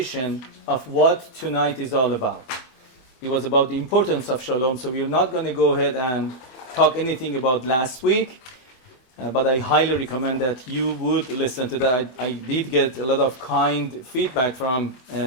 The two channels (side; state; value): right; late; 24 ms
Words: of what tonight is all about. It was about the importance of shalom, so we're not going to go ahead and talk anything about last week, but I highly recommend that you would listen to that. I did get a lot of kind feedback from